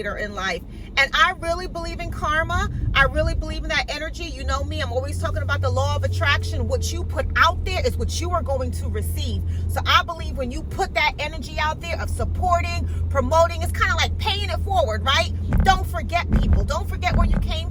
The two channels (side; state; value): both; identical; correlation 1.00